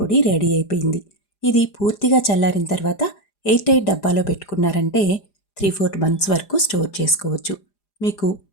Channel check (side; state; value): right; late; 4.9 ms